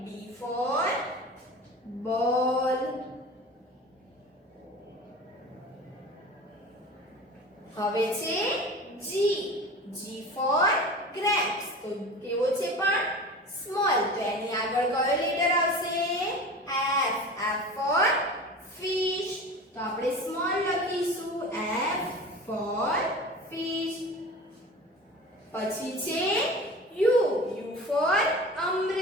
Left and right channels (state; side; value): normal; both; correlation 0.35